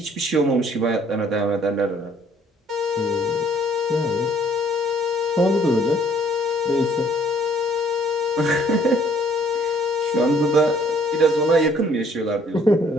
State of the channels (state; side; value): normal; both; correlation 0.61